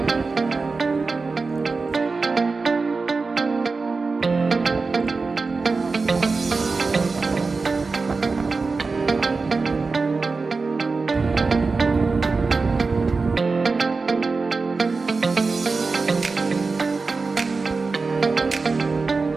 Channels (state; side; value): quieter; left; 4.2 dB